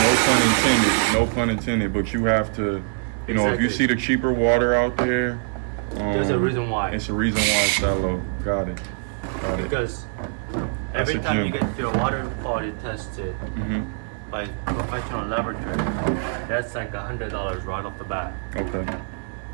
No pun intended. But you have to, if you Exactly. see the cheaper water out there, There's a reason why. It's a reason why it's that low. Got it. Because That's every a time you gem. get your water quality tested Mm-hmm. by professional laboratory, that's like $100 right off the bat. Okay.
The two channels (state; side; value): silent; left; 63 dB below the other